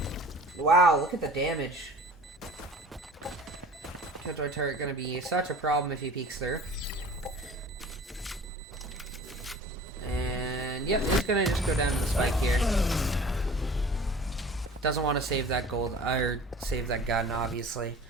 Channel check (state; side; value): normal; both; correlation 0.44